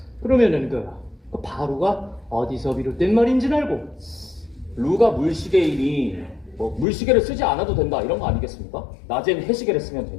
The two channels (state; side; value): drops out; right; at 6.9 s